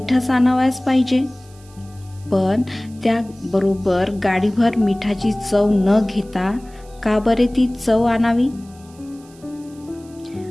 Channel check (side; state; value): right; noise; hiss, 27 dB below the sound